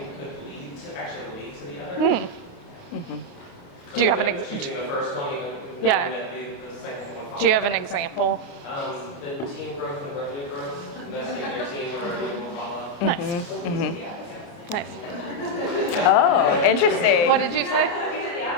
could actually lead to the other. Do you have an Choosing the first one, even Yeah. knowing that the second one Do you have an example? The team growth and revenue growth, investing in your team or revenue will follow. Nice. Nice. Oh, interesting. What did you say?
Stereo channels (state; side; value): late; right; 29 ms